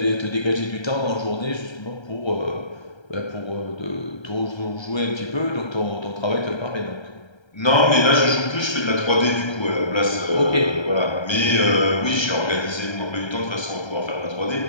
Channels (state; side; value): late; right; 1.3 ms